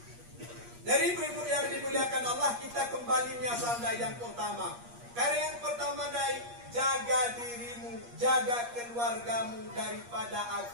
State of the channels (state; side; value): late; left; 8.5 ms